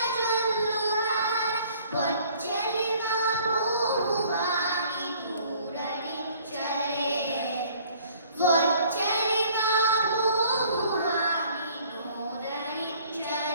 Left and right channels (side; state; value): both; inverted; correlation -0.56